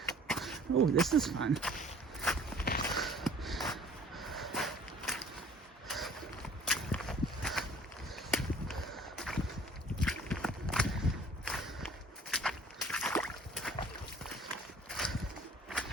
Oh, this is fun.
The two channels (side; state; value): both; normal; correlation 0.50